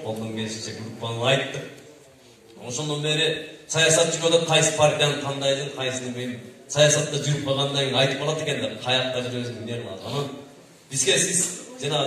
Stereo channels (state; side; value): identical; both; correlation 1.00